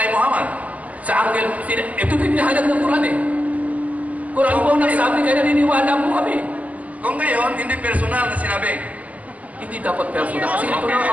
Muhammad? Sa Angel, ito pinahayag ng Quran eh. Quran po nagsabi, kaya naniniwala po kami. Kung gayon, hindi personal na sinabi. Hindi dapat personal kasi ito na ang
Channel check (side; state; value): left; late; 0.074 ms